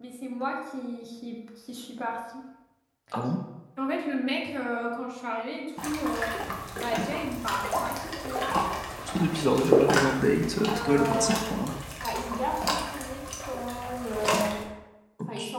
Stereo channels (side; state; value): both; identical; correlation 1.00